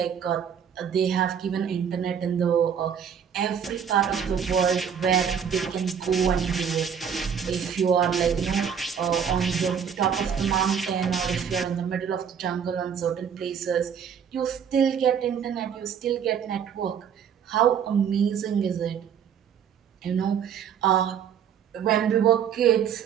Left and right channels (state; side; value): quieter; left; 7.8 dB